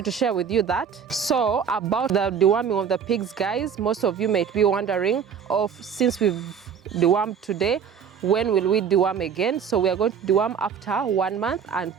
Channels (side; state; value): left; quieter; 7.3 dB